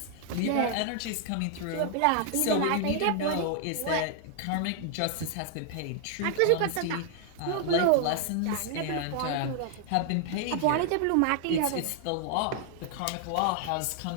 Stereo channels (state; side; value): different; both; correlation 0.00